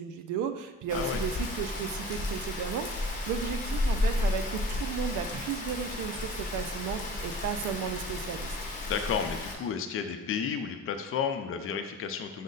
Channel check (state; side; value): normal; both; correlation 0.37